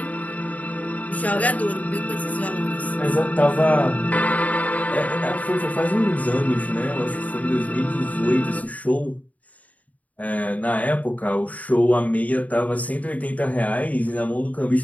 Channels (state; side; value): late; right; 0.072 ms